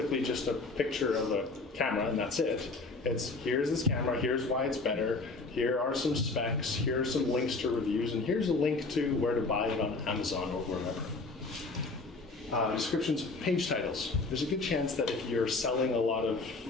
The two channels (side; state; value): right; quieter; 3.6 dB